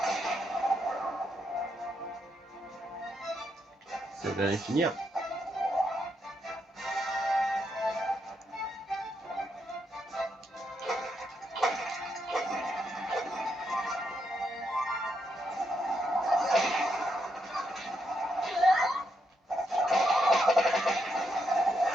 Ça va aller finir.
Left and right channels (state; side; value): normal; both; correlation 0.79